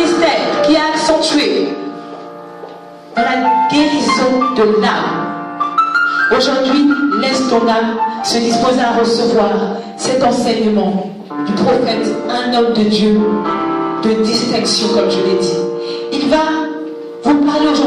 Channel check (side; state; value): both; identical; correlation 1.00